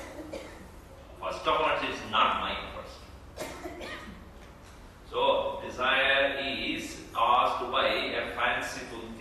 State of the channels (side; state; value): both; identical; correlation 1.00